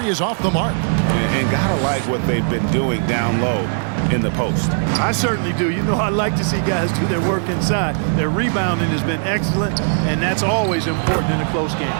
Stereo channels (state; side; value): silent; left; digital silence